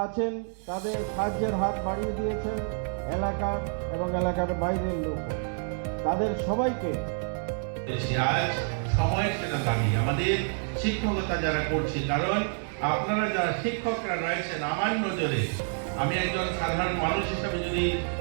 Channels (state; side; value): silent; left; 59 dB below the other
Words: আছেন তাদের সাহায্যের হাত বাড়িয়ে দিয়েছেন এলাকার এবং এলাকার বাইরের লোক, তাদের সবাইকে আজ সময়ের সেটা দাবি আমাদের শিক্ষকতা যারা করছি, কারণ আপনারা যারা শিক্ষকরা রয়েছেন আমার নজরে, আমি একজন সাধারণ মানুষ হিসাবে যদি